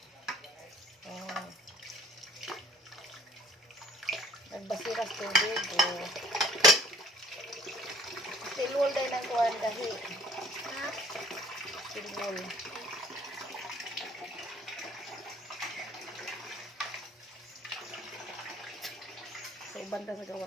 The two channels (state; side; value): normal; both; correlation 0.54